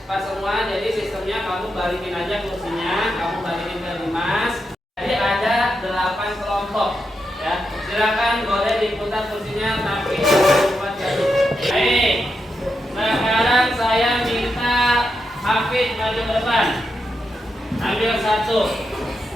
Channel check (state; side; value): normal; both; correlation 0.85